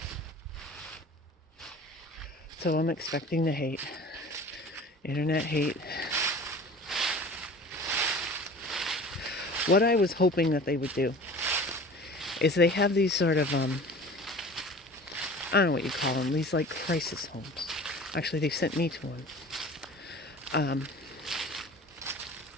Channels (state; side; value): normal; both; correlation 0.42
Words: So I'm expecting the hate. Internet hate. What I was hoping that they would do is they have these sort of, I don't know what you call them, these like crisis homes. Actually, they sent me to one.